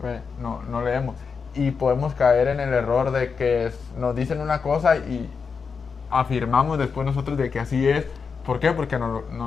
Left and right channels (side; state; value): right; quieter; 5.5 dB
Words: no leemos, y podemos caer en el error de que nos dicen una cosa y afirmamos después nosotros de que así es. ¿Por qué? Porque nos